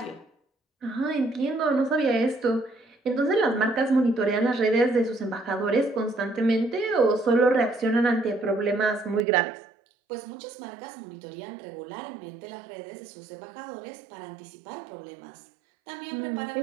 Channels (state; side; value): drops out; left; at 9.2 s